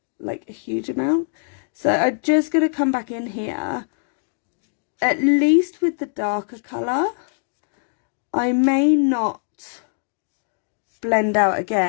Like a huge amount. So I'm just going to come back in here, at least with the darker colour. I may not blend out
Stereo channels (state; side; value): silent; right; digital silence